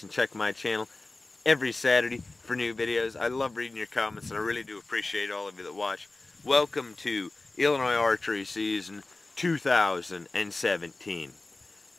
and check my channel every Saturday for new videos. I love reading your comments, and I really do appreciate all of you that watch. Welcome to Illinois Archery season 2017.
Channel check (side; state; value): right; quieter; 3.1 dB